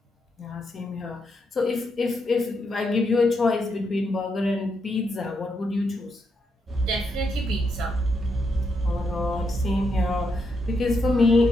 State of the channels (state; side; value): normal; both; correlation 0.81